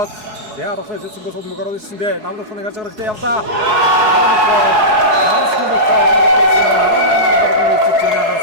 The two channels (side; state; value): left; late; 4.7 ms